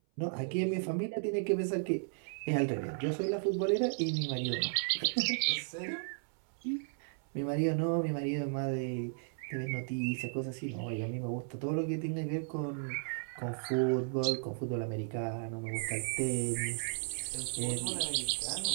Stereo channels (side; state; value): left; silent; 55 dB below the other